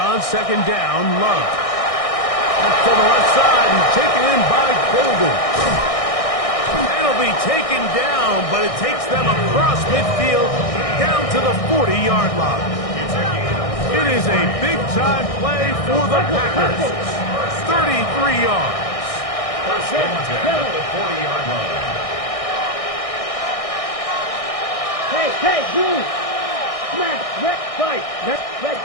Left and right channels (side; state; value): right; late; 1.6 ms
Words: second down, Love. To the left side and taken in by Golden. It'll be taken down, but it takes them across midfield down to the 40-yard line. It is a big-time play for the Packers. 33 yards. First and 10 at the 40-yard line. Hey, move. Smash, red, fight, red.